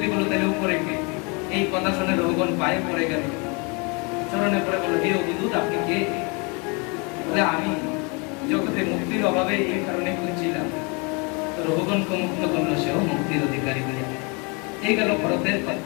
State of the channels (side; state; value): right; quieter; 31.5 dB